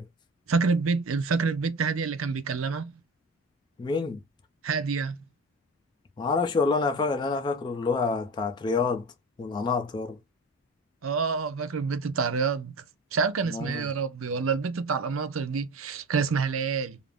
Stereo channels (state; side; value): normal; both; correlation 0.32